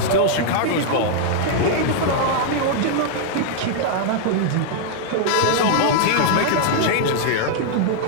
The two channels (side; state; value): both; different; correlation -0.01